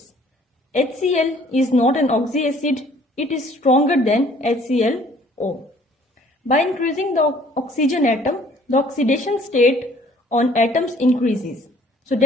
HCl is not an oxyacid, it is stronger than HClO. By increasing the oxygen atom, the oxidation state on atoms increases. So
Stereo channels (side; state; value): both; normal; correlation 0.57